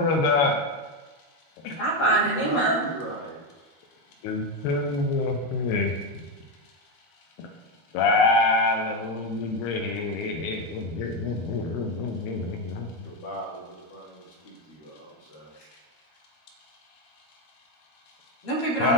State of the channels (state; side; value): late; right; 12 ms